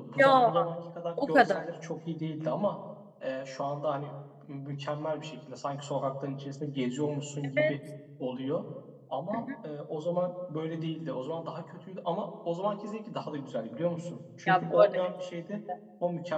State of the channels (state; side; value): identical; both; correlation 1.00